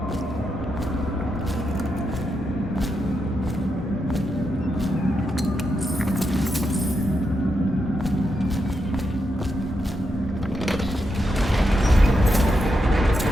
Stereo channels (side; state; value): both; normal; correlation 0.84